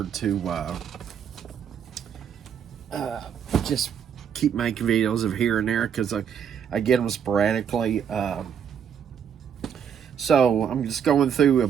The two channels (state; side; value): quieter; left; 8.0 dB